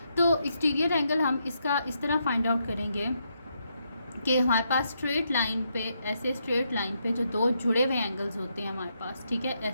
तो एक्सटीरियर एंगल हम इसका इस तरह फाइंड आउट करेंगे कि हमारे पास स्ट्रेट लाइन पे, ऐसे स्ट्रेट लाइन पे जो दो जुड़े हुए एंगल्स होते हैं हमारे पास, ठीक है,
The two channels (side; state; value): both; inverted; correlation -0.79